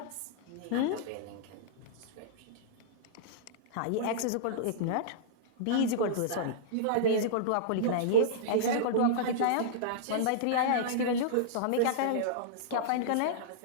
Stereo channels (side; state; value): both; different; correlation -0.03